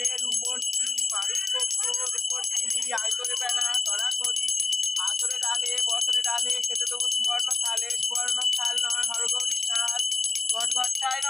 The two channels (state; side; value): quieter; right; 3.1 dB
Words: আসরে ডালে বছরে ডালে খেতে দেবো সুবর্ণ থালে, সুবর্ণ থাল নয় হরগৌরী থাল। ঘট ঘটায়